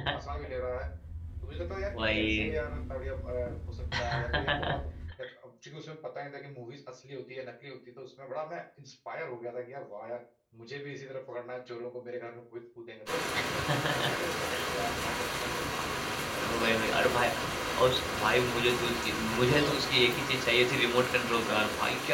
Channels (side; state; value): both; identical; correlation 1.00